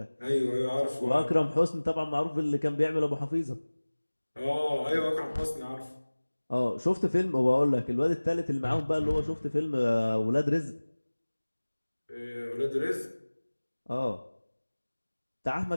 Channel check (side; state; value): both; inverted; correlation -1.00